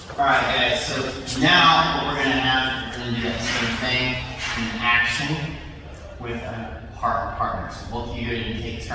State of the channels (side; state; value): both; identical; correlation 1.00